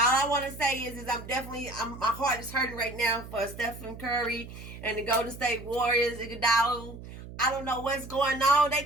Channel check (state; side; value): noise; right; hum, 13 dB below the sound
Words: I want to say is my heart is hurting right now for Stephen Curry and the Golden State Warriors, Iguodala. I don't know what's going on. They